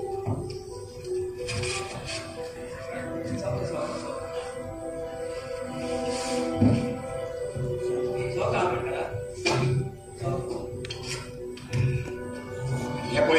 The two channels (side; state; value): both; identical; correlation 1.00